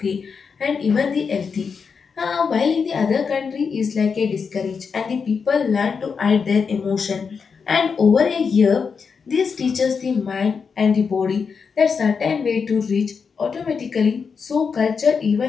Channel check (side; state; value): right; quieter; 5.7 dB